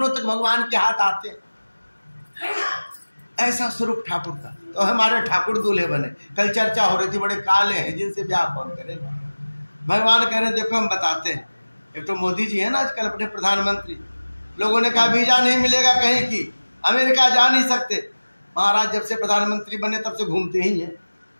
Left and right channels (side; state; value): both; inverted; correlation -1.00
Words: तक भगवान के हाथ आते हैं, ऐसा स्वरूप ठाकुर का। तो हमारे ठाकुर दूल्हे बने। कल चर्चा हो रही थी, बड़े काले हैं, जिनसे ब्याह कौन करेगा। भगवान कह रहे देखो हम बताते हैं। एक तो मोदी जी है ना आजकल अपने प्रधानमंत्री, लोगों ने कहा वीजा नहीं मिलेगा कहीं की, अमेरिका जा नहीं सकते। महाराज जब से प्रधानमंत्री बने तब से घूमते ही हैं,